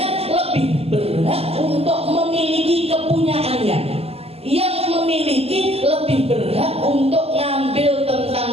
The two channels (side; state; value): left; late; 0.29 ms